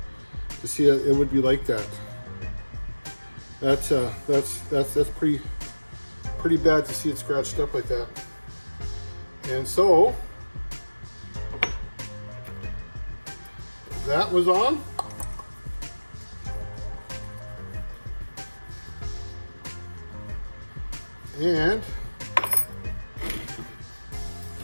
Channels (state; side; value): inverted; both; correlation -1.00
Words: to see it would be like that. That's pretty bad to see it scratched up like that. And so that was on. And